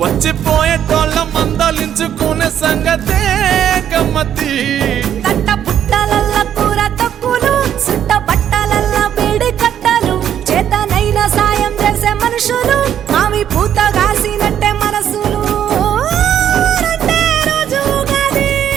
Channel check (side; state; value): left; quieter; 9.9 dB